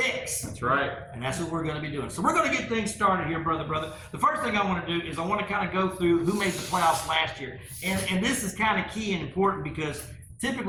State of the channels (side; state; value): both; identical; correlation 1.00